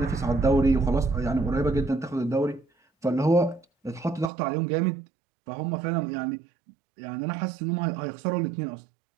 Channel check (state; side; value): drops out; left; at 4.3 s